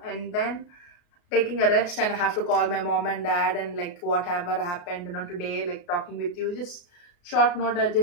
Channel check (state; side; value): late; right; 34 ms